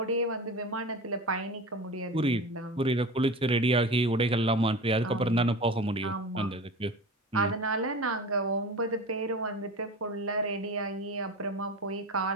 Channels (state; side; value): normal; both; correlation 0.32